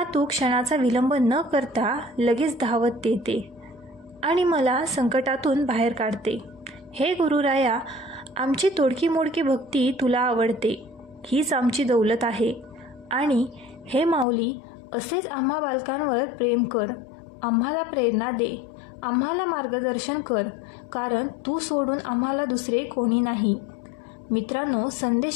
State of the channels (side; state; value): right; drops out; at 14.2 s